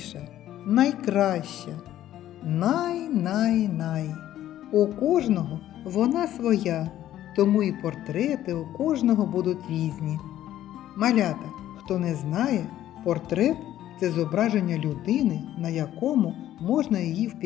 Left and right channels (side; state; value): right; quieter; 12.7 dB